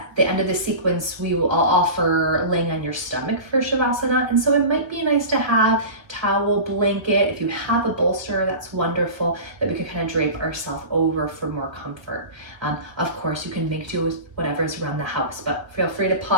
the sequence, I'll offer laying on your stomach for Shavasana. And so it might be nice to have towel, blanket. If you have a bolster, that's wonderful, that we could kind of drape ourselves over for more comfort. Of course, you can make do with whatever is around the house, but feel free to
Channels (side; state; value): left; late; 1.4 ms